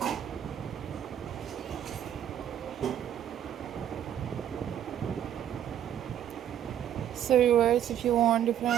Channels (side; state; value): left; quieter; 10.3 dB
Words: So viewers, if you want